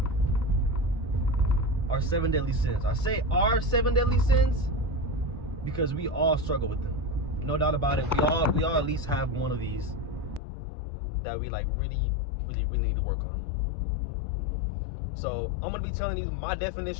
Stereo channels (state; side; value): drops out; right; at 10.4 s